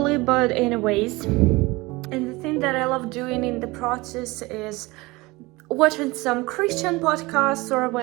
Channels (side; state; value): left; quieter; 22.4 dB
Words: but anyways. And the thing that I love doing in the process is watching some Christian podcasts or